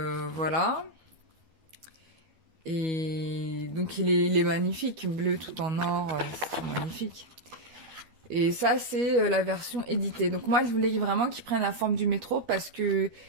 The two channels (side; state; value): left; late; 12 ms